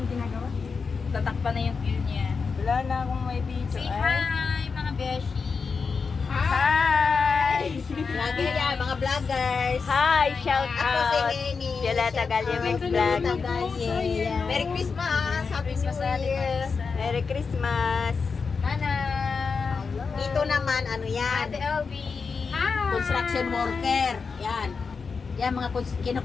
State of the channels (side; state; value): right; quieter; 5.1 dB